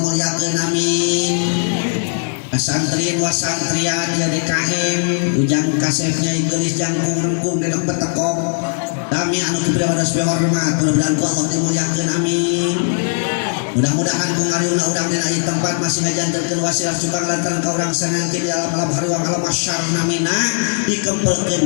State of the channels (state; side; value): silent; right; digital silence